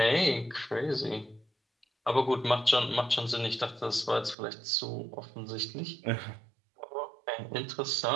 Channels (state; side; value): drops out; left; at 4.4 s